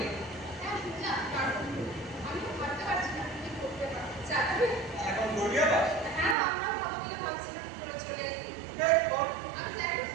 হ্যাঁ বুঝলাম, কারণ আমিও ভাবতে পারছি না কি করতে পারবো। যাবি? এখন দৌড়িয়ে পাস হ্যাঁ আমরাও ভালো করে ভাবছিলাম তোরা চলে আসবি। আমি যাই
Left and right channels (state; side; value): drops out; left; at 6.4 s